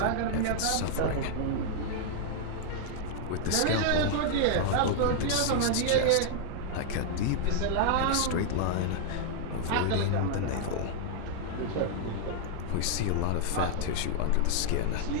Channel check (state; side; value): different; both; correlation -0.01